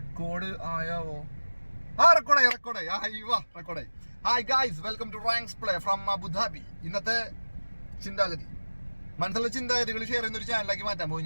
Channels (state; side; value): inverted; both; correlation -1.00